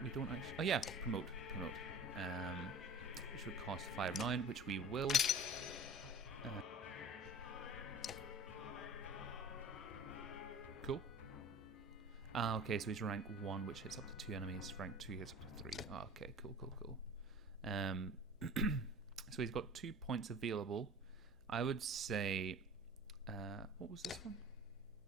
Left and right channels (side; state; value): right; noise; hum, 27 dB below the sound